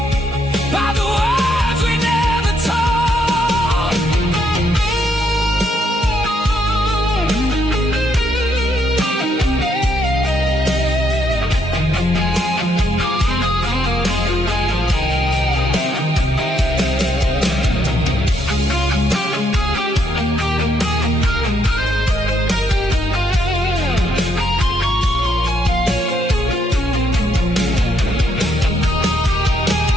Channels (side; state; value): both; normal; correlation 0.74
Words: by the words we never told.